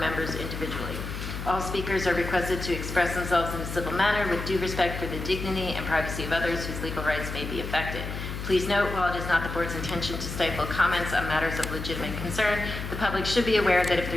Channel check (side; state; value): left; noise; hum, 6 dB below the sound